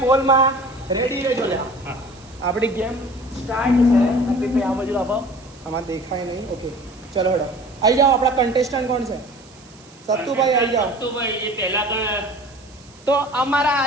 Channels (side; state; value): right; noise; hiss, 26 dB below the sound